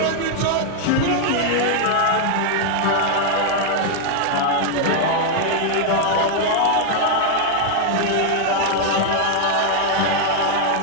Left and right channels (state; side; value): different; both; correlation 0.00